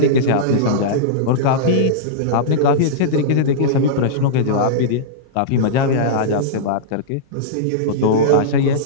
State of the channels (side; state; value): both; different; correlation -0.03